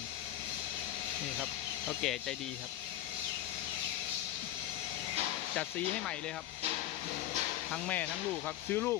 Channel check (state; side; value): quieter; right; 13.1 dB